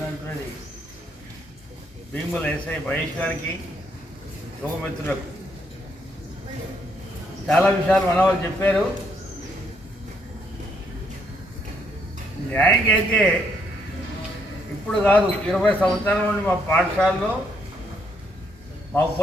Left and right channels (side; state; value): both; normal; correlation 0.73